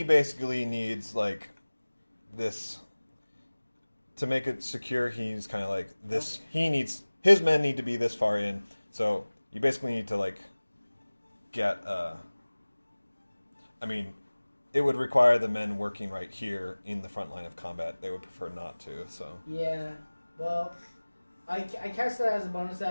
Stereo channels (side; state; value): both; inverted; correlation -1.00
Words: basically needs, like, this... To make it secure, he's kind of like this... Okay. His men need to be this far in, so you basically need to, like, get... I mean, it would require the men working right here in the front line of combat. They would prefer not to, so... Yeah, well, I cast that as a bonus